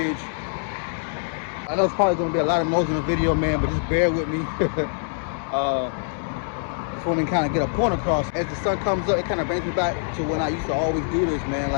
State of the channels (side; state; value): right; silent; digital silence